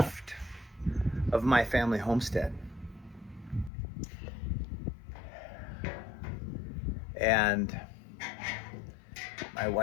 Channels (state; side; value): drops out; right; at 3.7 s